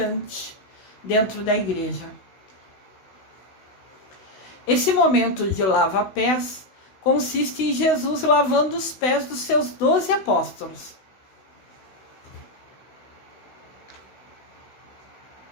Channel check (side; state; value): right; late; 16 ms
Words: dentro da igreja. Esse momento de lava-pés consiste em Jesus lavando os pés dos seus 12 apóstolos.